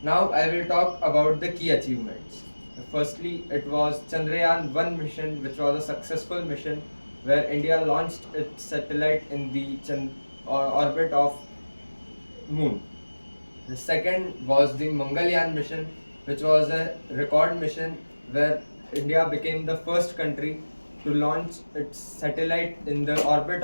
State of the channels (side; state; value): both; inverted; correlation -1.00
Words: Now I will talk about the key achievements. Firstly, it was Chandrayaan 1 mission, which was a successful mission where India launched its satellite in the orbit of Moon. The second was the Mangalyaan mission, which was a record mission where India became the first country to launch its satellite in the orbit